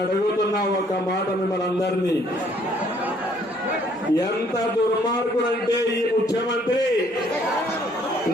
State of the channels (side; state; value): both; normal; correlation 0.63